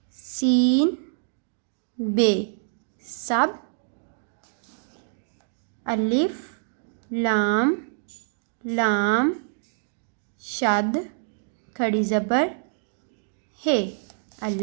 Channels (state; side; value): silent; left; digital silence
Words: सीन बे सब, अलिफ लाम लाम शद खड़ी ज़बर है,